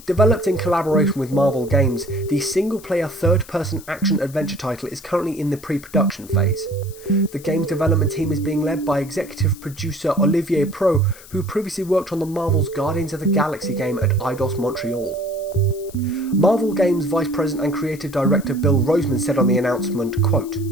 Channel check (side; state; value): left; noise; hiss, 20 dB below the sound